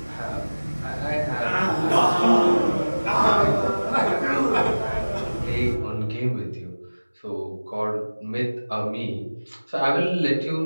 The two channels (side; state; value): both; inverted; correlation -1.00